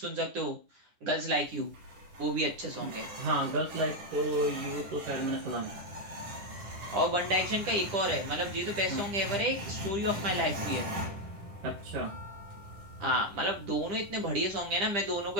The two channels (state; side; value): late; left; 10 ms